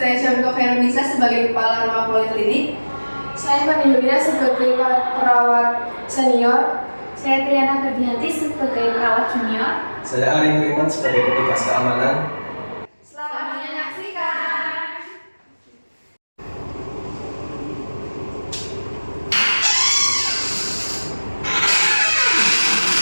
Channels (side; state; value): both; inverted; correlation -1.00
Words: Syamiko Khairunisa sebagai kepala rumah poliklinik. Saya Fani Lubina sebagai perawat senior. Saya Triana Ferdianti sebagai perawat junior. Saya Ari Nuriman sebagai petugas keamanan. Selamat menyaksikan.